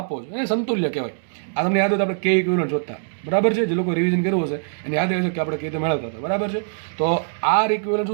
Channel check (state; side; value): silent; left; digital silence